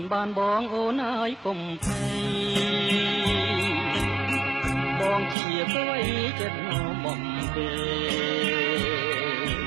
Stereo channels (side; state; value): left; drops out; at 5.4 s